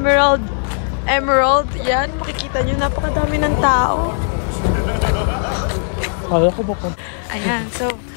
Yan, makikita nyo. Napakadami ng tao. Ayan, so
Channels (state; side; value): silent; right; digital silence